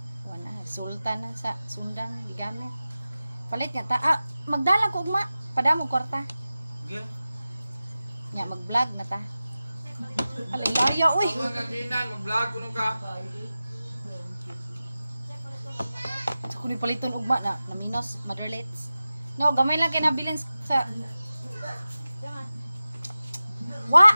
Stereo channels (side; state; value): both; inverted; correlation -0.95